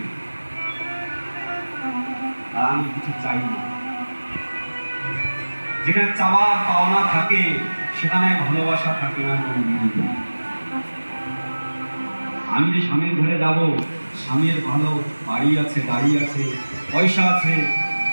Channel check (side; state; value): both; inverted; correlation -1.00